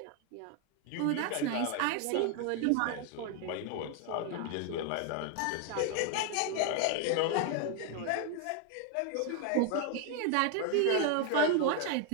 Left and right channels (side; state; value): both; different; correlation 0.01